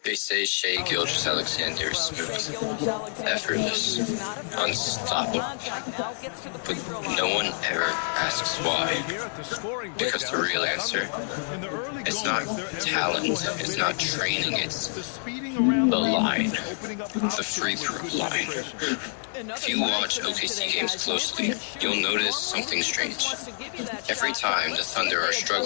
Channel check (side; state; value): right; silent; digital silence